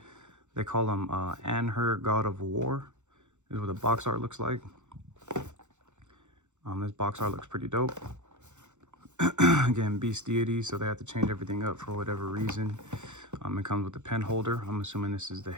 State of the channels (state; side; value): late; left; 0.84 ms